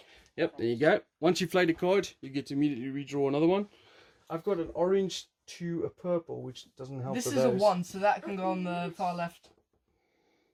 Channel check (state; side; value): identical; both; correlation 1.00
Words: Yep, there you go. Once you've played a card, you get to immediately redraw another one. I've got an orange to a purple, which doesn't help This with is those. a 1, so that can go on the far left.